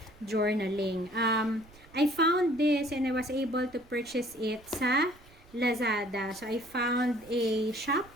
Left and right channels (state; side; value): noise; right; rumble, 24 dB below the sound